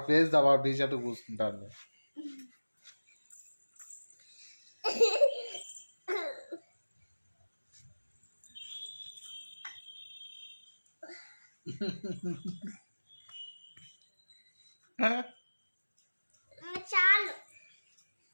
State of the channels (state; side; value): inverted; both; correlation -1.00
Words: ఫేస్ ఆ బాబు టీ షర్ట్ పూసుకుంటాను. చాలు